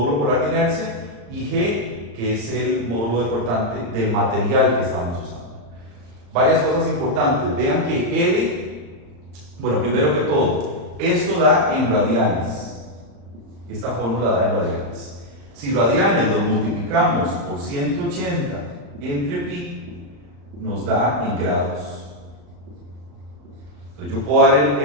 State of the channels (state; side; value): late; left; 35 ms